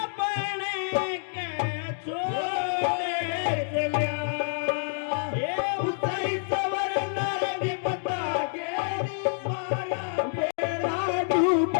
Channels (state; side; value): silent; right; digital silence